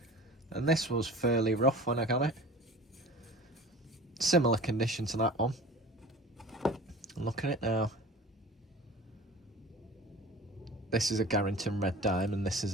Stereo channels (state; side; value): normal; both; correlation 0.39